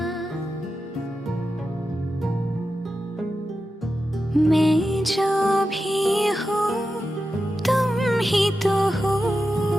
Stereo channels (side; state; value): both; normal; correlation 0.91